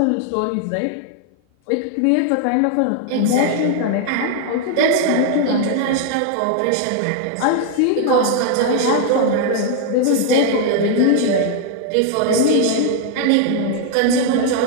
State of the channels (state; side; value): different; both; correlation 0.00